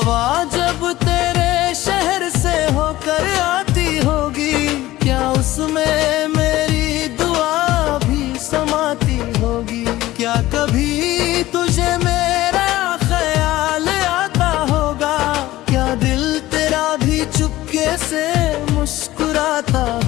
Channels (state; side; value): quieter; right; 16.6 dB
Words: जब तेरे शहर से होकर आती होगी, क्या उसमें मेरी दुआ भी समाती होगी। क्या कभी तुझे मेरा ख्याल आता होगा, क्या दिल तेरा भी चुपके से मुस्कुराता